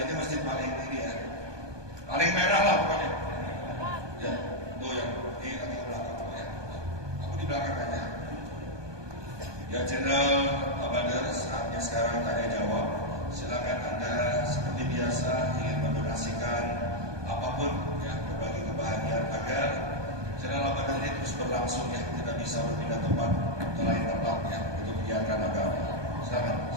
masjid paling ini ya, paling merah lah pokoknya. Ya, tuh yang ini nanti ke belakang ya. Aku di belakang aja. Ya, channel Abadar, saatnya sekarang tanya jawab. Silakan Anda seperti biasa ingin mendonasikan apapun ya, berbagi kebahagiaan agar channel Abadar ini terus berlangsung ya, tidak bisa berpindah tempat ke lain tempat ya, untuk menyiarkan agama. Silakan.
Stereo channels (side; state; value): left; late; 1.2 ms